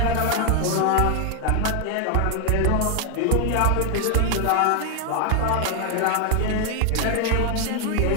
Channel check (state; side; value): different; both; correlation 0.00